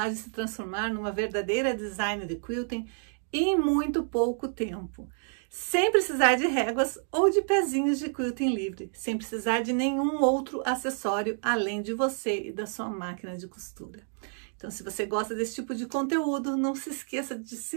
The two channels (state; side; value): silent; left; 58 dB below the other